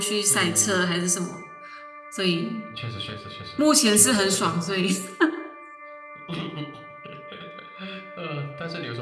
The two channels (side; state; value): both; identical; correlation 1.00